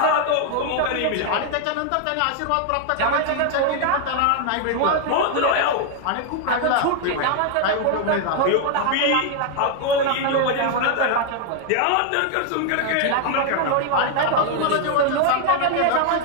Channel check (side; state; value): both; different; correlation 0.00